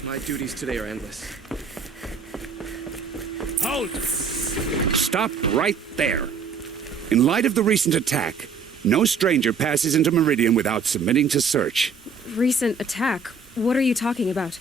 My duties today are endless. Halt! Stop right there. In light of the recent attack, no stranger passes into Meridian without submitting to search. Recent attack? What are you talking about?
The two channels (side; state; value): left; quieter; 5.0 dB